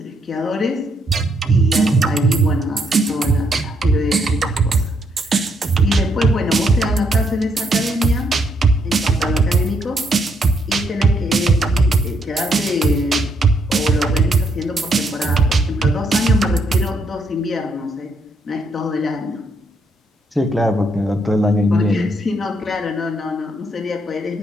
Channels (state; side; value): normal; both; correlation 0.74